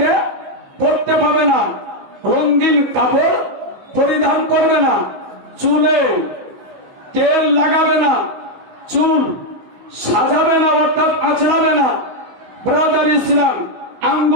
পরতে পারবে না, রঙিন কাপড় পরিধান করবে না, চুলে তেল লাগাবে না, চুল সাজাবে না, অর্থাৎ আঁচড়াবে না। ব্রাদার ইসলাম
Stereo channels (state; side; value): late; left; 16 ms